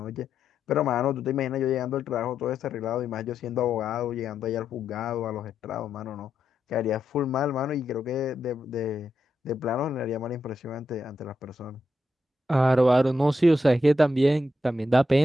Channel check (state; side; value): normal; both; correlation 0.83